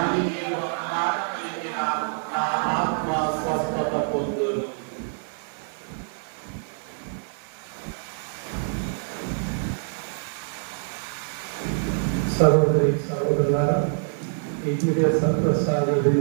మీరు ఒక మాట పలికిన నా ఆత్మ స్వస్థత పొందును. సహోదరి సహోదరులారా, ఈ దివ్య సత్ప్రసాద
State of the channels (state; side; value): silent; left; 60 dB below the other